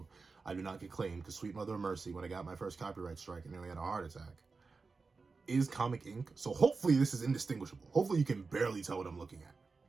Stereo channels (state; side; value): quieter; left; 4.3 dB